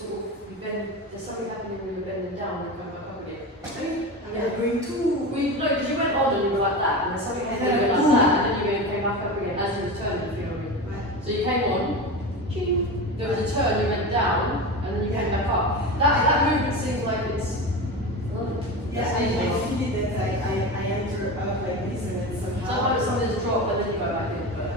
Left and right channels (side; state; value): both; normal; correlation 0.25